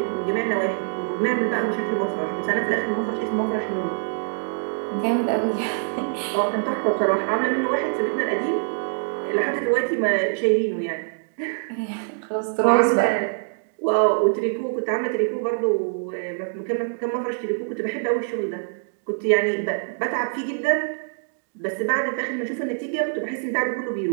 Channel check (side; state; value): left; silent; digital silence